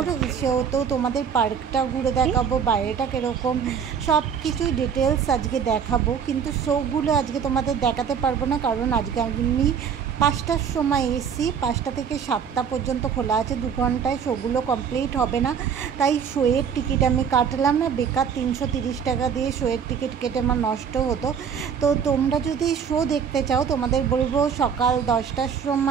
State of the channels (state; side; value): quieter; left; 7.2 dB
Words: সেহেতু তোমাদের পার্কটা ঘুরে দেখাবো, বাইরেটা কীরকম সব কিছুই ডিটেলস আজকে দেখাবো। কিন্তু শোগুলো আজকে তোমাদের দেখাতে পারবো না, কারণ আজকে আমি 5টার সময় এসি, 5টা থেকে 7টা পর্যন্ত খোলা আছে। 2 ঘন্টায় শোগুলো কমপ্লিট হবে না, তাই শোয়ের টিকিট আমি কাটলাম না। বেকার 330 টাকা দিয়ে শোয়ের টিকিট কেটে আমার নষ্ট হতো। তো তোমরা যদি শো দেখতে চাও, তোমাদের বলবো সকাল 10টার